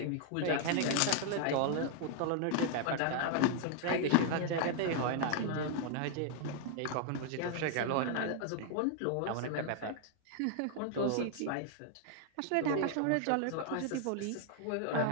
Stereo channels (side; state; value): both; different; correlation 0.00